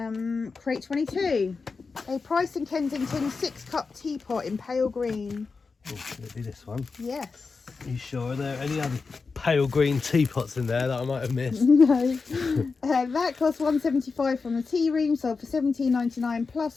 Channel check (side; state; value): right; quieter; 4.6 dB